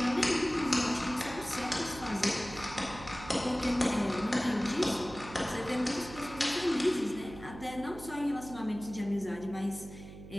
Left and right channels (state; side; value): noise; right; hum, 14 dB below the sound